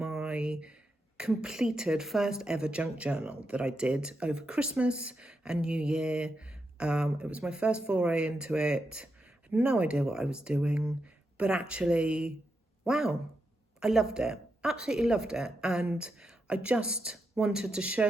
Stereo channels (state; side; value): normal; both; correlation 0.85